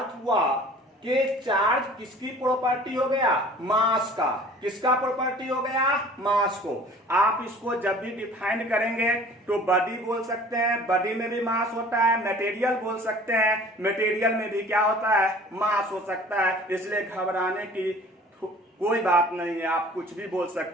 हुआ कि चार्ज किसकी प्रॉपर्टी हो गया? मास का। किसका प्रॉपर्टी हो गया? मास को। आप इसको जब भी डिफाइन करेंगे तो बॉडी बोल सकते हैं, बॉडी में भी मास होता है। मटेरियल बोल सकते हैं, मटेरियल में भी क्या होता है? मास हो सकता है। इसलिए घबराने की कोई बात नहीं है, आप कुछ भी बोल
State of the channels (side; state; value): both; normal; correlation 0.47